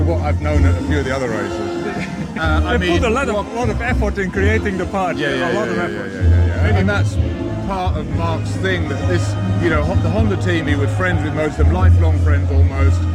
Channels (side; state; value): both; identical; correlation 1.00